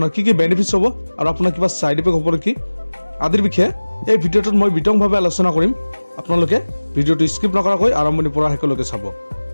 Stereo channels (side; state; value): both; inverted; correlation -1.00